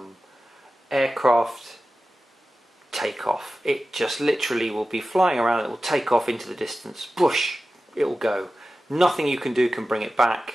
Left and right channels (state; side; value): normal; both; correlation 0.94